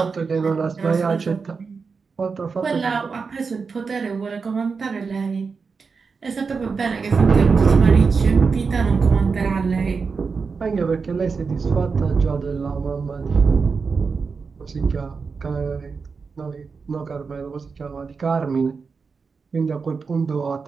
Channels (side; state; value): left; quieter; 5.0 dB